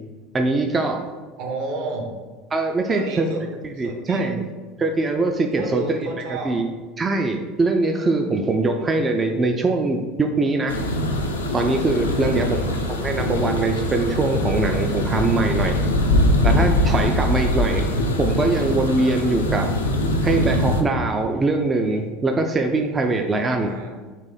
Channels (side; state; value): both; normal; correlation 0.43